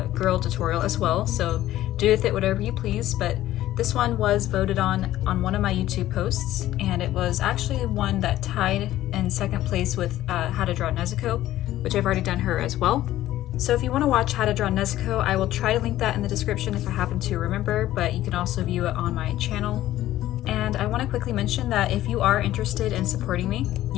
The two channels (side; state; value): right; quieter; 14.2 dB